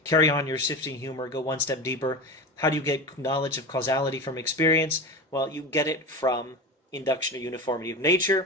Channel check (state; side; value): normal; both; correlation 0.26